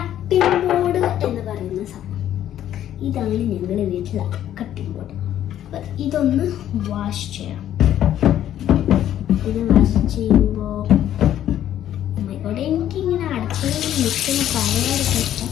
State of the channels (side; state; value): right; quieter; 11.4 dB